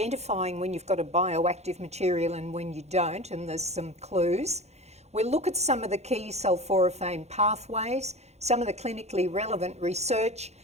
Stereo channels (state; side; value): late; left; 0.32 ms